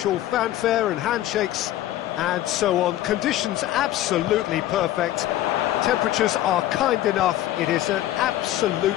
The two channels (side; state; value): right; quieter; 13.9 dB